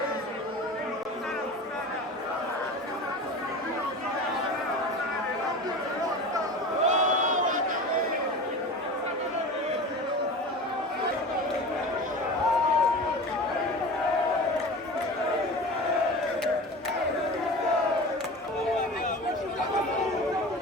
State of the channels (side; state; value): both; normal; correlation 0.33